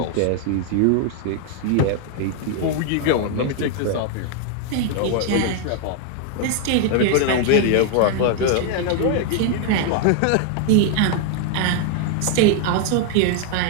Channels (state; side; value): different; both; correlation 0.00